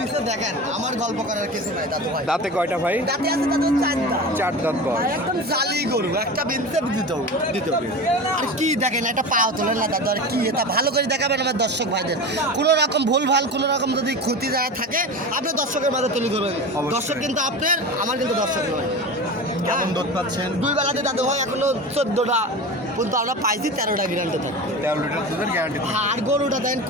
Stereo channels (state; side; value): normal; both; correlation 0.29